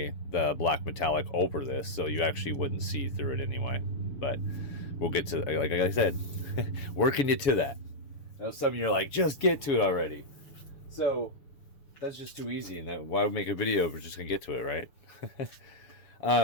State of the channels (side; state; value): right; late; 6.8 ms